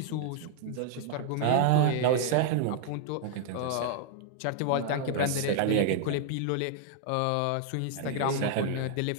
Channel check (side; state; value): both; different; correlation 0.00